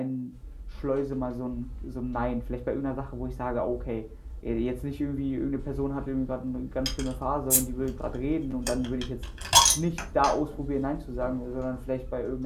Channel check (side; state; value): both; identical; correlation 1.00